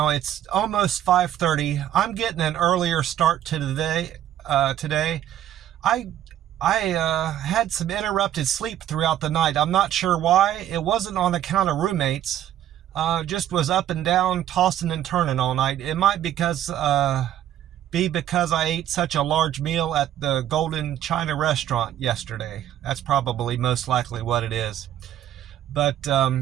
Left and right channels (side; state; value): left; quieter; 11.6 dB